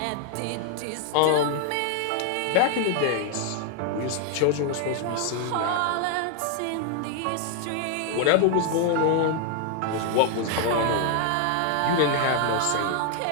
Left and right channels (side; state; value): both; different; correlation 0.00